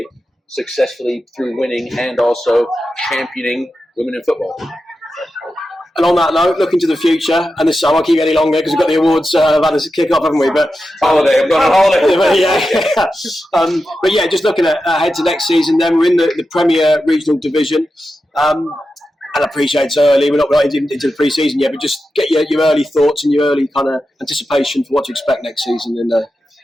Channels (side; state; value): both; normal; correlation 0.90